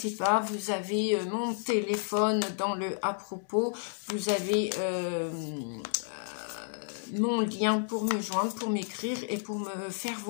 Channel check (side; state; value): right; silent; digital silence